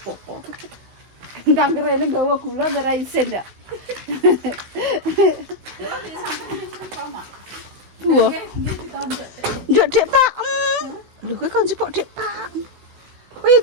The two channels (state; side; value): late; left; 16 ms